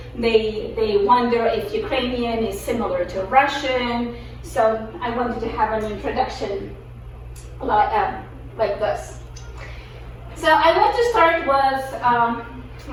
they wonder if Ukrainian is similar to Russian. So I wanted to have an introduction like this. So I want to start with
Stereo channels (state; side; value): identical; both; correlation 1.00